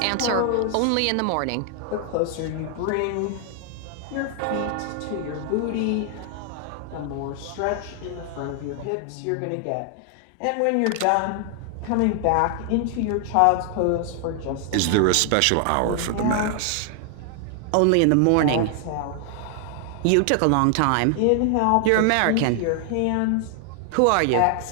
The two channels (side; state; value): both; different; correlation 0.00